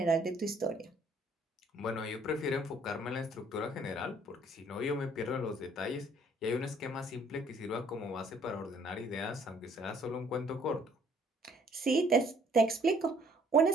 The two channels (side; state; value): both; normal; correlation 0.60